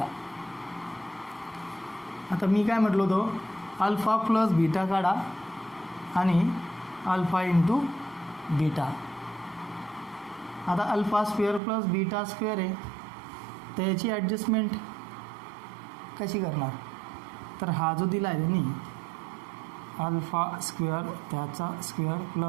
आता मी काय म्हटलो होतो, अल्फा प्लस बीटा काढा आणि अल्फा इंटू बीटा. आता alpha square plus beta square आहे, तर याची ॲडजस्टमेंट कशी करणार? तर हा जो दिला आहे त्यांनी अल्फा स्क्वेअर त्याचा स्क्वेअर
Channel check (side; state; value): left; drops out; at 11.6 s